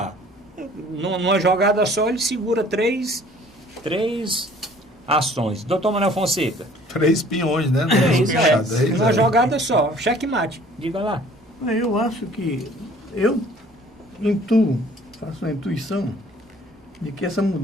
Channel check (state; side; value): normal; both; correlation 0.53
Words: Numa jogada só, ele segura três ações. Doutor Manuel Fonseca. 3 peões, né? Uma jogada só, checkmate. Diga lá. Eu acho que eu faço uma intuição de que essa